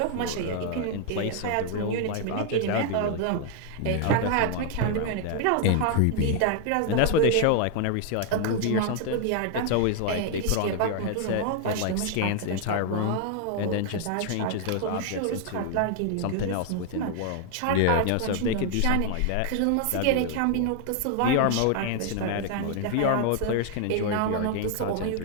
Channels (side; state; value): both; different; correlation 0.00